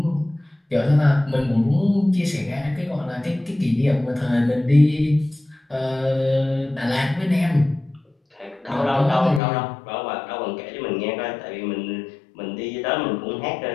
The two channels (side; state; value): right; drops out; at 9.4 s